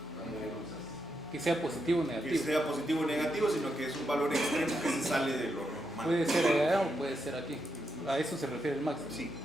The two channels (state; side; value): normal; both; correlation 0.83